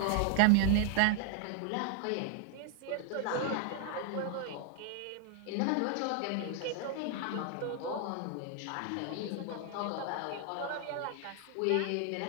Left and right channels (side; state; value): both; different; correlation 0.00